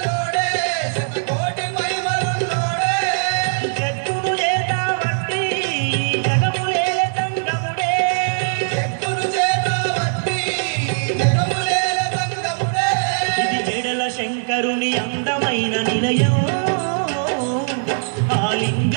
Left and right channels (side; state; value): left; silent; digital silence